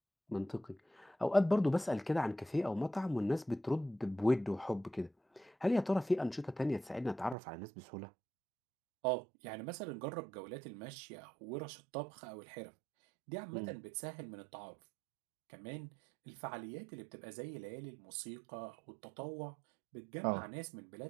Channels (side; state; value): left; drops out; at 7.4 s